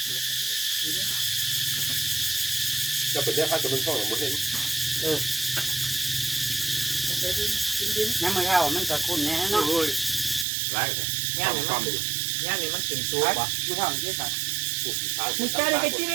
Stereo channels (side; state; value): left; drops out; at 10.5 s